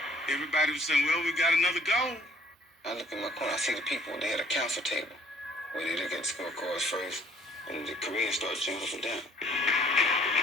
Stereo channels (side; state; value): both; normal; correlation 0.59